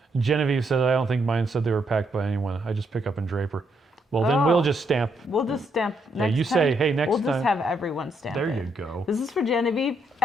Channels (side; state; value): both; normal; correlation 0.76